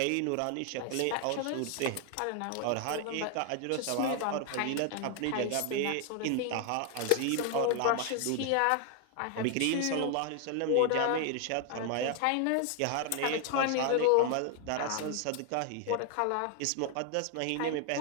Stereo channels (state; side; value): different; both; correlation 0.00